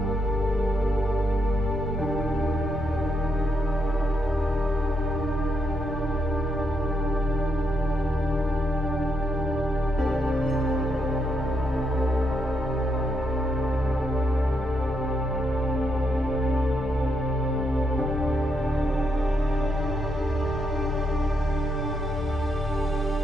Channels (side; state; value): both; normal; correlation 0.79